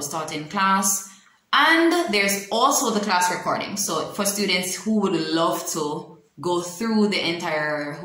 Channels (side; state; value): both; identical; correlation 1.00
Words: taught in class. And there's also the class recording. So for students who would love to go through the entire